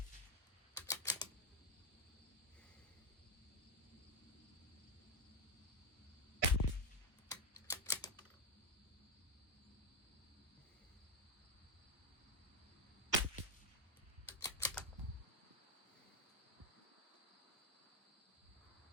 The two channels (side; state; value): both; normal; correlation 0.07